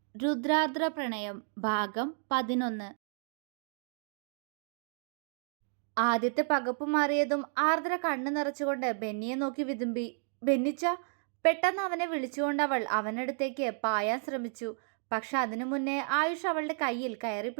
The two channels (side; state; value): left; silent; 56 dB below the other